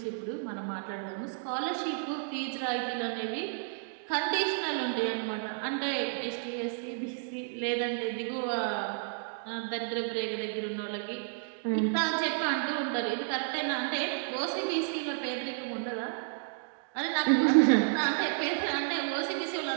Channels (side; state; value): left; silent; digital silence